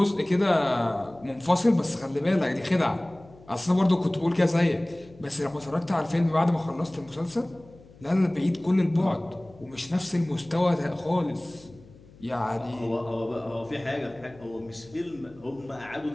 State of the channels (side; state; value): left; noise; hum, 24 dB below the sound